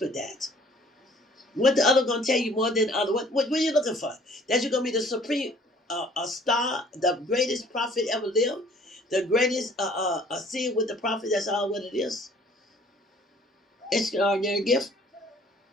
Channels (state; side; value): normal; both; correlation 0.55